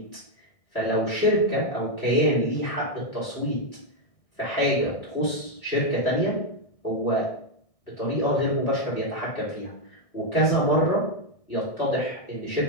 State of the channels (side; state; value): right; late; 1.6 ms